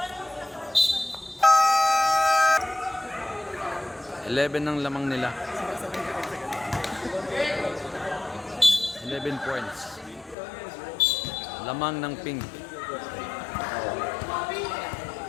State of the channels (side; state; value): right; drops out; at 10.4 s